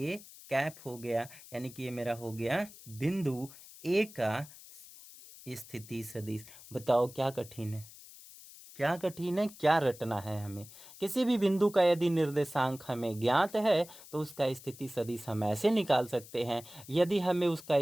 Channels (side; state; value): left; noise; hiss, 18 dB below the sound